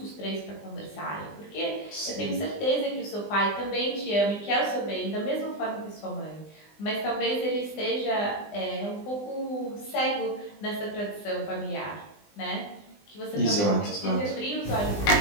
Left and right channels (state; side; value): late; right; 20 ms